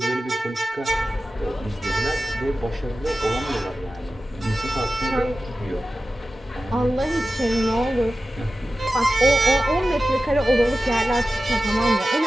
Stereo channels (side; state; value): both; normal; correlation 0.95